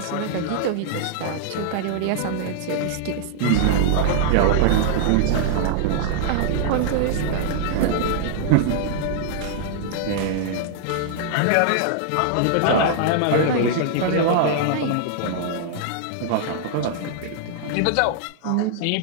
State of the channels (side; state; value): both; different; correlation -0.01